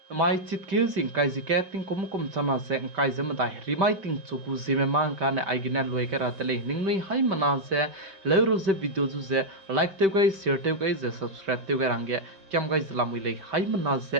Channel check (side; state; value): left; late; 5.2 ms